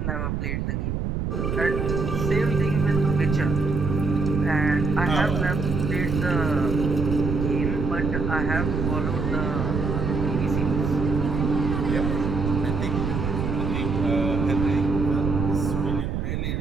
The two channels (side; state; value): right; noise; rumble, 1 dB below the sound